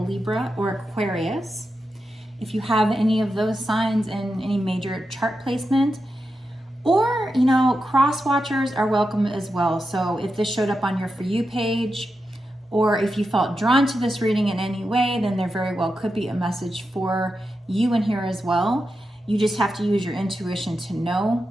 or Aquarius. If you have any of those signs in any major chart placement, or, cross watchers are welcome as well. So if this showed up on your For You page, or if you felt drawn to this reading in any way, then there very well could be a message for you in here as well. You just have to use your intuition to know.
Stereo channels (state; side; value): normal; both; correlation 0.89